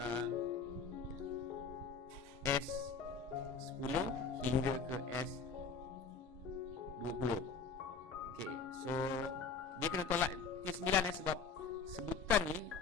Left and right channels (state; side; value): quieter; right; 5.4 dB